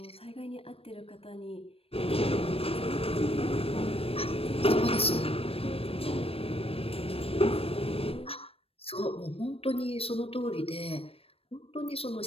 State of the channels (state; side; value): late; right; 0.28 ms